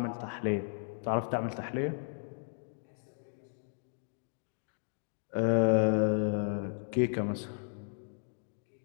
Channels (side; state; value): right; silent; digital silence